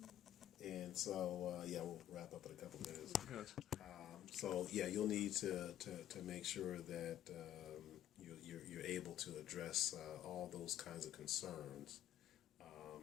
And so, yeah, we'll wrap up in a couple minutes. Gotcha. So, yeah, you'll need to make sure that you're able to address all those kinds of concerns.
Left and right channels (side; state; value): right; quieter; 11.9 dB